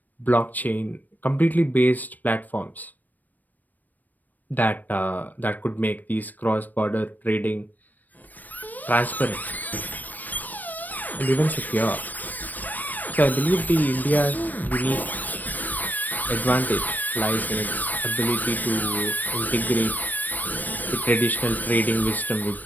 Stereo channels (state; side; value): late; right; 0.085 ms